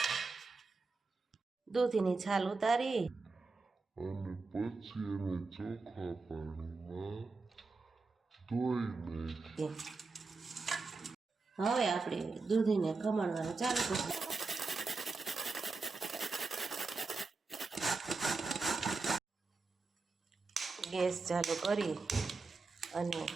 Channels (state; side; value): quieter; left; 4.0 dB